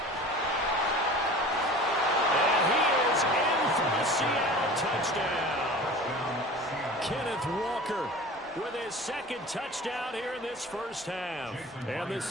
And he is in for the Seattle touchdown. Kenneth Walker with his 2nd touchdown here in this first half. And the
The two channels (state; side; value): normal; both; correlation 0.39